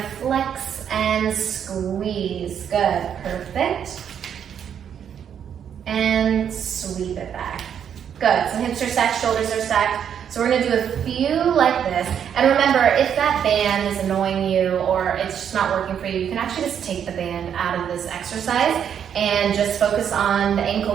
flex and squeeze. Good, perfect. hips are stacked, shoulders are stacked. So we're gonna do a few like this. And remember, if that band is annoying you or it's just not working for you, you can actually just take the band out of this exercise and just focus on the ankle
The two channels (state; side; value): quieter; left; 8.5 dB